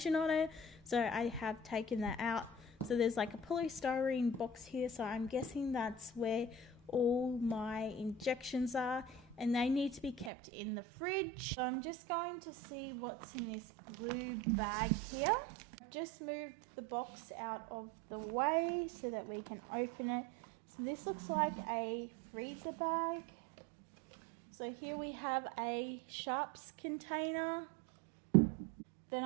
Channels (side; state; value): left; drops out; at 10.3 s